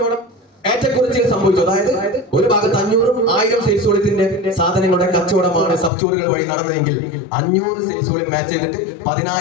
ഏറ്റക്കുറച്ചിൽ സംഭവിച്ചു, അതായത് ഒരു ഭാഗത്ത് 500ഉം 1000 സെയിൽസ് വോളിയത്തിന്റെ സാധനങ്ങളുടെ കച്ചവടമാണ് സബ് സ്റ്റോറുകൾ വഴി നടന്നതെങ്കിൽ 500 സെയിൽസ് വോളിയം മാച്ച് ചെയ്തിട്ട്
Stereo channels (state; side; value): drops out; right; at 5.9 s